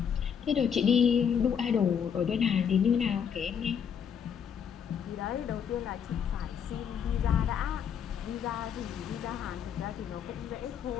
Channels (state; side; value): quieter; right; 7.7 dB